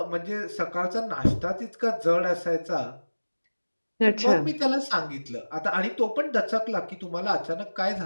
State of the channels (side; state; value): both; inverted; correlation -1.00